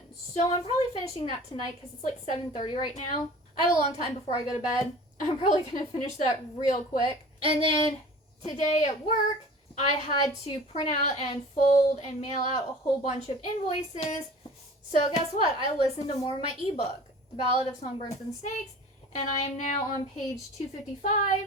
So I'm probably finishing that tonight, because it's like 7:30 right now. I have a long time before I go to bed. I'm probably going to finish that real quick. And then today at work, I had to print out and fold and mail out a whole bunch of invoices. So guess what? I listened to more of my ebook, The Ballad of Songbirds and Snakes, and I am now on page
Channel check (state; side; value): normal; both; correlation 0.43